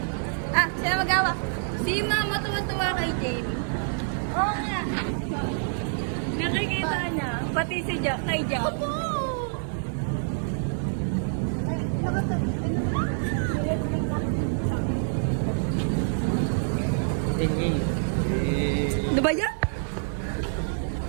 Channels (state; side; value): silent; left; 60 dB below the other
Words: Sino magawa? Si Mama tuwa-tuwa kay Jamie. Oo nga. Nakikita niya. Pati si Jack kay Jack. Opo! Ano ba yan?